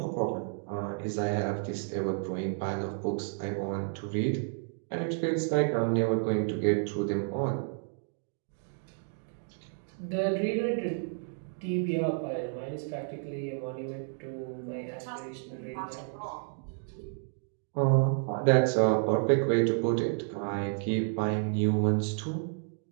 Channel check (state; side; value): silent; left; 57 dB below the other